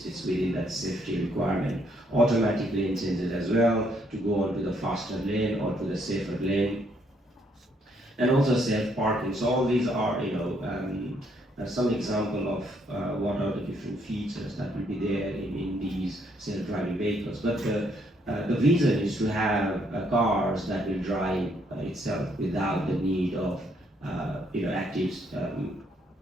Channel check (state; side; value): normal; both; correlation 0.71